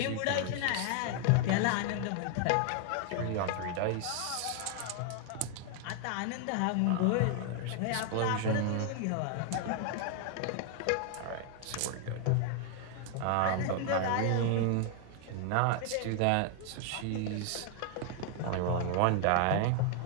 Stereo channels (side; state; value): both; different; correlation 0.00